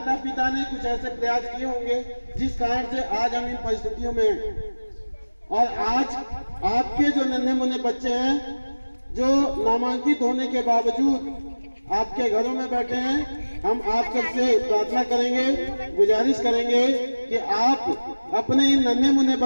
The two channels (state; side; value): inverted; both; correlation -1.00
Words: पिता ने कुछ ऐसे प्रयास किए होंगे जिस कारण से आज हम इन परिस्थितियों में हैं। और आज आपके जो नन्हे मुन्ने बच्चे हैं जो नामांकित होने के बावजूद आपके घरों में बैठे हैं, हम आप सबसे प्रार्थना करेंगे, गुजारिश करेंगे कि आप अपने इन नन्हे मुन्ने